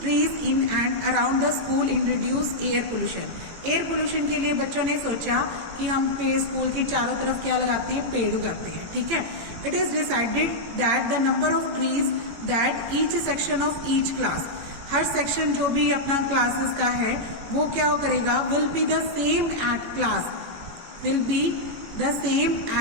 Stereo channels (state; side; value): late; left; 17 ms